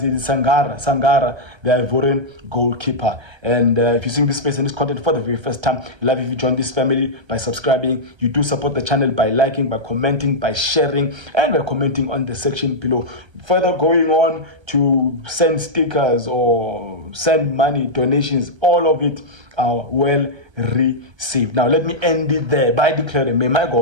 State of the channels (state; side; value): late; left; 1.3 ms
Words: Sangara, the Ivorian goalkeeper. And if you're seeing this space and this content for the very first time, love if you join this family by subscribing. You do support the channel by liking, by commenting, by sharing, and by commenting on the section below. Further going on to send stickers or send money, donations, all of it are well received. Now let me end it there by declaring, may my